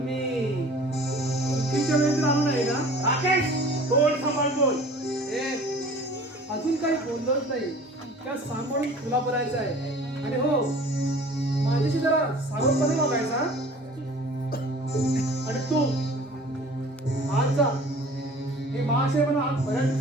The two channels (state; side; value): normal; both; correlation 0.46